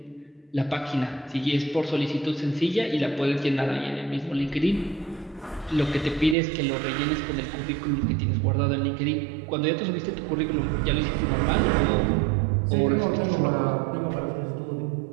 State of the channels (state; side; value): drops out; left; at 6.4 s